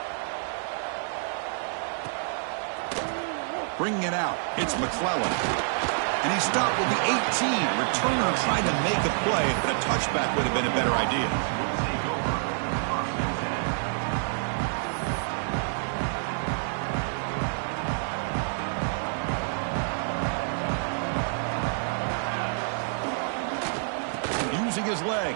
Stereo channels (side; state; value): left; silent; 60 dB below the other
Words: Bringing it out, it's McClellan. And he stopped with the 18. Returner trying to make a play, but a touchback would have been a better idea. Using his